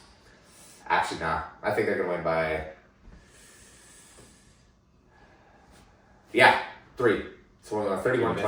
Actually, not. I think they're going to win by 3. So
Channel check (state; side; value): identical; both; correlation 1.00